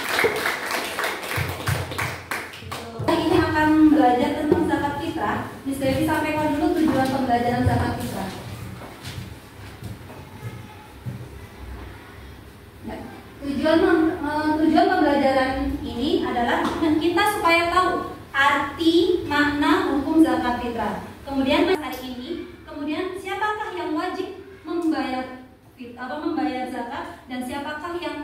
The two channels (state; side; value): identical; both; correlation 1.00